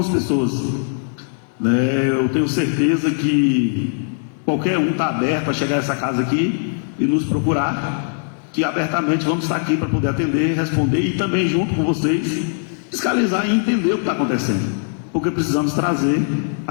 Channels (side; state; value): right; silent; digital silence